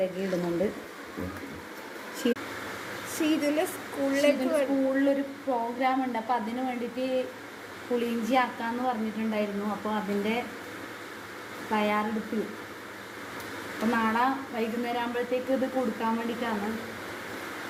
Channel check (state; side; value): identical; both; correlation 1.00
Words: ഇടുന്നുണ്ട്. സ്കൂളിലൊരു പ്രോഗ്രാം ഉണ്ട്, അപ്പോൾ അതിന് വേണ്ടിയിട്ട് പുളിയിഞ്ചി ആക്കാമെന്ന് പറഞ്ഞിട്ടുണ്ടായിരുന്നു. അപ്പോൾ അതിൻ്റെ തയ്യാറെടുപ്പിൽ അപ്പോൾ നാളെ വൈകുന്നേരം ആകുമ്പോഴത്തേക്ക് ഇത് കൊടുക്കാൻ വേണ്ടിയിട്ടാണ്.